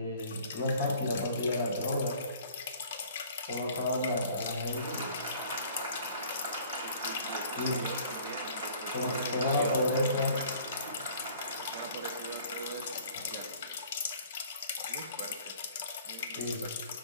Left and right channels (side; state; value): both; inverted; correlation -0.52